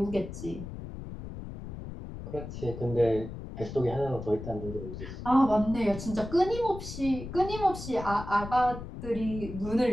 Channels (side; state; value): left; noise; rumble, 10 dB below the sound